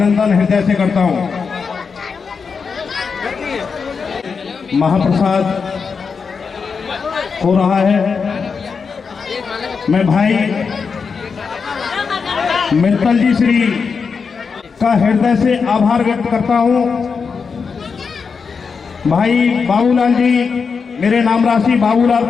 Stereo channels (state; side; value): quieter; right; 5.5 dB